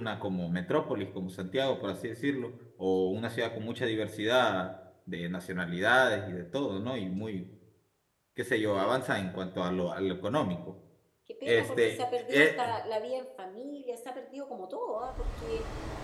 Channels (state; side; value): identical; both; correlation 1.00